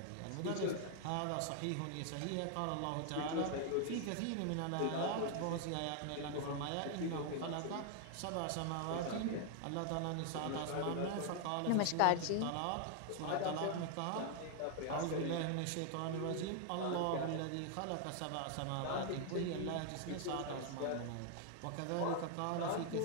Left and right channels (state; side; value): different; both; correlation 0.00